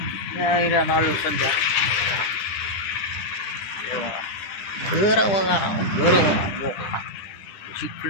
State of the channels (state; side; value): late; right; 10 ms